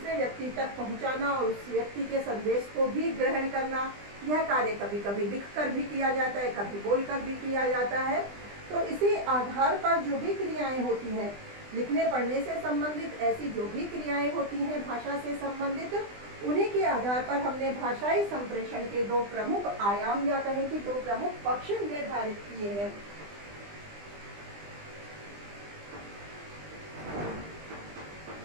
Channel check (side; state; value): left; late; 20 ms